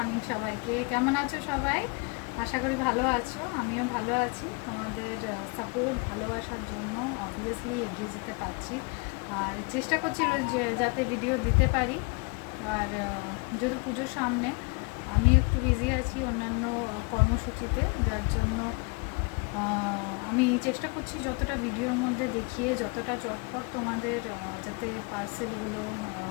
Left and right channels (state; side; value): quieter; right; 31.4 dB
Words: সবাইকে। কেমন আছো সবাই? আশা করি ভালো আছো। আমিও ভালো আছি। তোমাদের সাপোর্ট ভালোবাসার জন্য অবভিয়াসলি এগিয়ে যেতে পারছি। আর চেষ্টা করছি যে যাতে ভিডিও দিতে পারি। আর যেহেতু পুজোর সামনে আমি একটু বিজি আছি অন্যান্য কর্মসূচিতে, যার জন্য আমি চেষ্টা করছি যতটা ভিডিওর মধ্যে দেখিয়ে যতটা চটপট তোমাদের যাতে পার্সেলগুলো